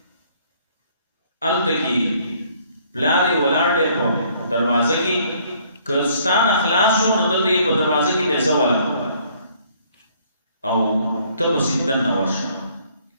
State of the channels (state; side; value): inverted; both; correlation -0.62